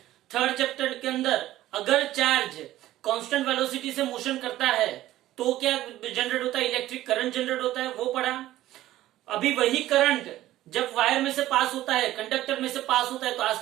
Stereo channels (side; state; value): left; quieter; 14.7 dB